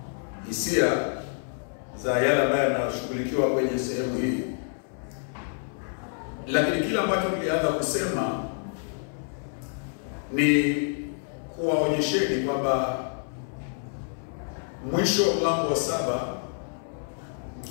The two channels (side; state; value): right; silent; 60 dB below the other